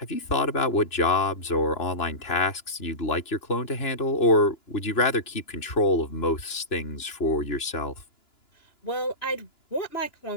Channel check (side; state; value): right; late; 2.9 ms